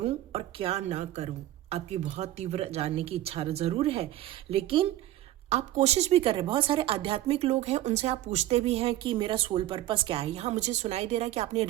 और क्या ना करूं। आपकी बहुत तीव्र जानने की इच्छा जरूर है, लेकिन आप कोशिश भी कर रहे हैं। बहुत सारे आध्यात्मिक लोग हैं, उनसे आप पूछते भी हैं कि मेरा सोल पर्पस क्या है। यहाँ मुझे सुनाई दे रहा है कि आपने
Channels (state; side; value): quieter; left; 14.3 dB